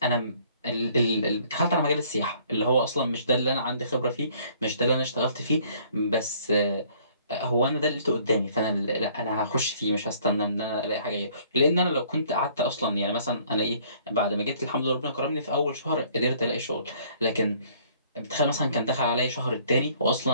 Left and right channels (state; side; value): inverted; both; correlation -0.58